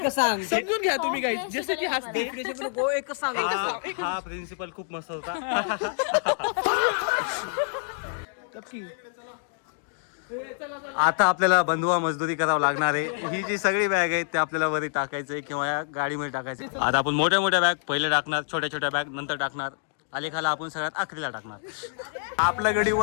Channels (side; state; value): right; silent; digital silence